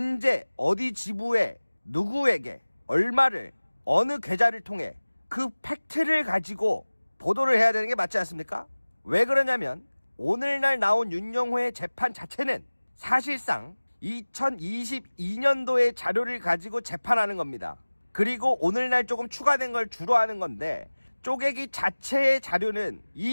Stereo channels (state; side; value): inverted; both; correlation -1.00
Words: 어디 지부에, 누구에게, 얼마를, 어느 계좌를 통해 그 팩트를 가지고 보도를 해야 되는 게 맞지 않습니까? 왜 그러냐면 오늘날 나온 윤영호의 재판 자체는 사실상 2022년도의 자료를 가지고 재판하는 겁니다. 그리고 오늘날 조금 추가된 걸 주로 하는 건데 쪼개기 자체의 자료는